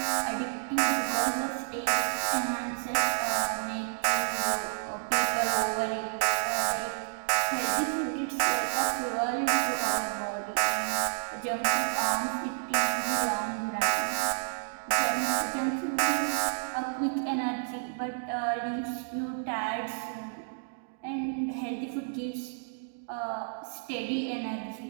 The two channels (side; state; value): left; silent; digital silence